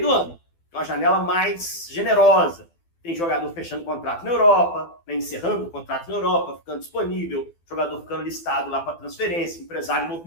do ano. uma janela mais generosa. Tem jogador fechando contrato na Europa, né, encerrando o contrato na Europa, ficando disponível, jogador ficando listado lá para transferência, empresário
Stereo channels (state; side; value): late; right; 12 ms